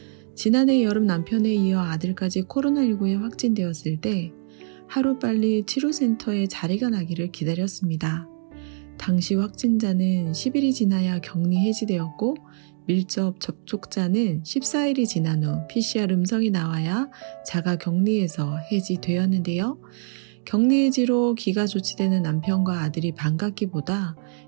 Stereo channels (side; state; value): left; silent; digital silence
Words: 지난해 여름 남편에 이어 아들까지 코로나19에 확진되었을 때 하루빨리 치료센터에 자리가 나기를 기다렸습니다. 당시 확진자는 10일이 지나야 격리 해지되었고 밀접 접촉자는 14일이 지난 후 PCR 음성이 나와야 자가 격리에서 해지되었는데요. 격리 해지로 귀가 조치되는 남편과 아들이 반갑기보다